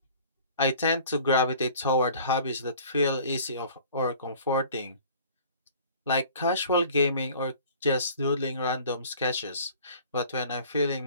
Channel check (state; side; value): inverted; both; correlation -0.48